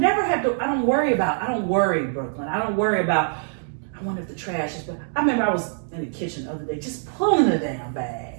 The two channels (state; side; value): silent; left; digital silence